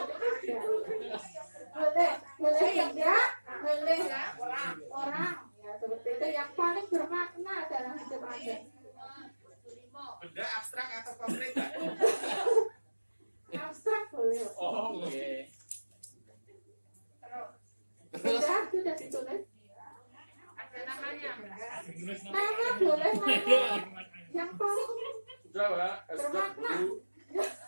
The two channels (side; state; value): both; inverted; correlation -1.00